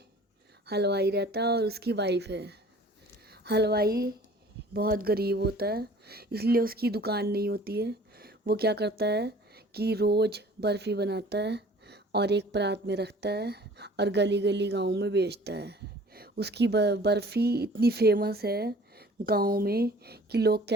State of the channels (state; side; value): normal; both; correlation 0.49